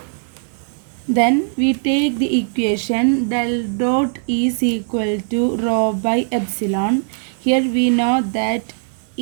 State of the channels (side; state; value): left; silent; digital silence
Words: Then we take the equation del dot E is equal to rho by epsilon. Here we know that